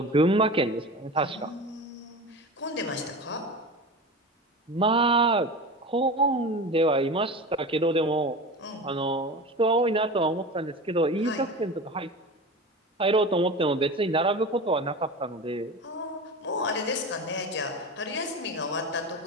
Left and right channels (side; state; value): both; normal; correlation 0.30